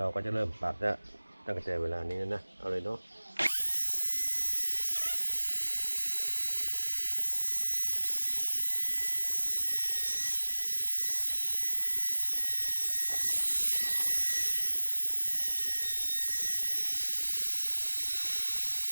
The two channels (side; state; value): both; inverted; correlation -1.00